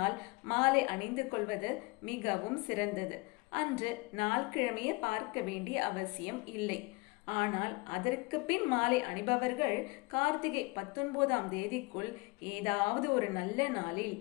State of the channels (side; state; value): right; quieter; 25.8 dB